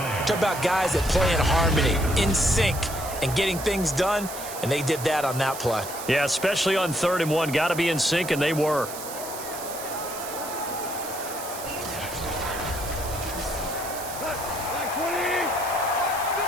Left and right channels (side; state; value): right; noise; hiss, 10 dB below the sound